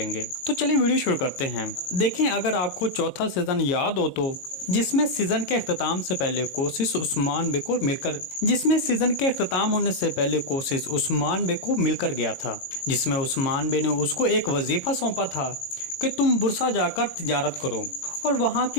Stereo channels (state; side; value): late; right; 22 ms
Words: तो चलिए वीडियो शुरू करते हैं। देखें, अगर आपको चौथा सीजन याद हो तो जिसमें सीजन के अख्ताम से पहले कोशिश उस्मान बे को मिलकर गया था, जिसमें उस्मान बे ने उसको एक वजीफा सौंपा था कि तुम बुरसा जाकर तिजारत करो और वहाँ